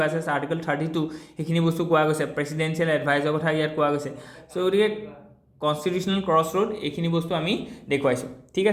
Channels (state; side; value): identical; both; correlation 1.00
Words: versus article 32 সেইখিনি বস্তু কোৱা গৈছে প্ৰেচিডেন্সিয়েল এডভাইজৰ কথা ইয়াত কোৱা গৈছে চ' গতিকে কনষ্টিটিউচনেল ক্ৰছ ৰোড এইখিনি বস্তু আমি দেখুৱাইছোঁ ঠিক